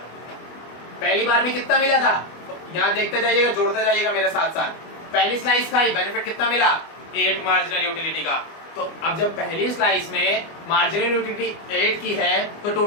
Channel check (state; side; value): late; right; 25 ms